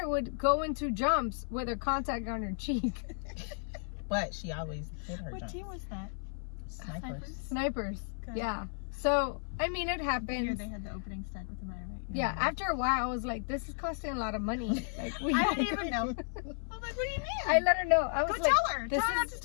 would go into jumps with her contact on her cheek. But she always hit her What jumps. team was that? Snipers. Snipers. Good. Yeah. So, I mean, it The year happens. they had the opening stunt with the Maya, right? Yeah, after a while, I was like, this is costing a lot of money. Like, we I didn't even know. I was like, what do you mean? I let her know. I was Go like, tell her. this Tell her not is- to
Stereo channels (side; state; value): right; silent; 55 dB below the other